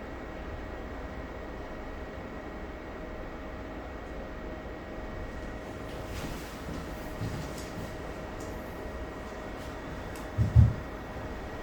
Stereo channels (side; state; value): both; identical; correlation 1.00